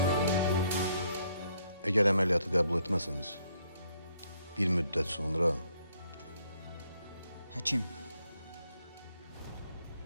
Əgər əməliyyatı qəbul etməsiniz, bir müddət sonra Həkim,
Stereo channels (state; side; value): inverted; both; correlation -0.71